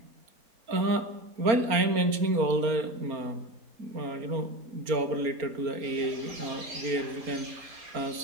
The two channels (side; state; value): left; late; 4.3 ms